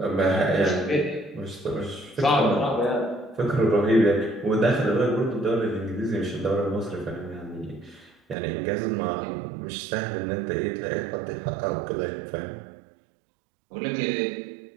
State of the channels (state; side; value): drops out; left; at 8.3 s